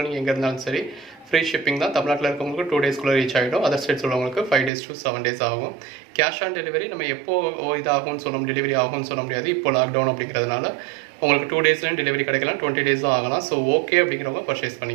நீங்கள் எங்கே இருந்தாலும் சரி ஃப்ரீ ஷிப்பிங் தான். தமிழ்நாட்டில் இருக்கவங்களுக்கு 2 டேஸ்க்குள்ளே ரீச் ஆகிடும். அதர் ஸ்டேட்ஸ் உள்ளவங்களுக்கு 5 days to 7 days ஆகும். கேஷ் ஆன் டெலிவரி நம்ம எப்போ இதாகும்னு சொல்ல டெலிவரி ஆகும்னு சொல்ல முடியாது. இப்போ லாக்டவுன் அப்படிங்கிறதுனால உங்களுக்கு 2 daysலையும் டெலிவரி கிடைக்கலாம், 20 days ஆகலாம். ஸோ ஓகே அப்படிங்கிறவங்க பர்ச்சேஸ்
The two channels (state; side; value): drops out; left; at 4.7 s